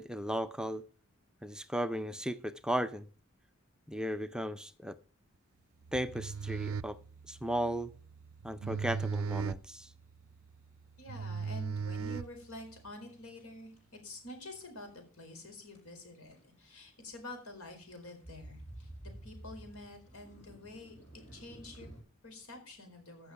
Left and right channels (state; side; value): normal; both; correlation 0.77